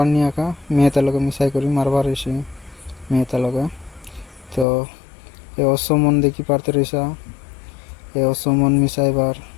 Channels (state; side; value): drops out; right; at 4.7 s